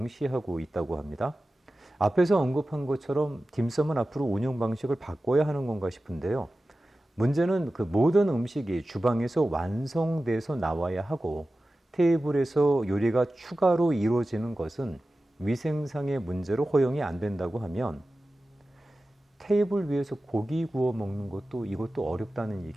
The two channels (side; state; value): both; normal; correlation 0.95